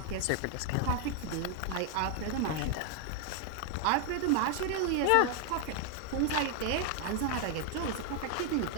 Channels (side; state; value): both; different; correlation 0.00